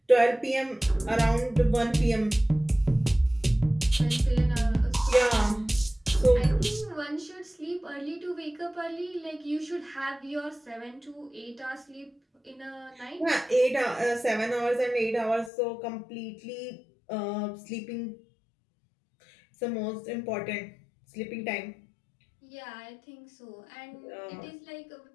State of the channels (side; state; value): right; drops out; at 15.5 s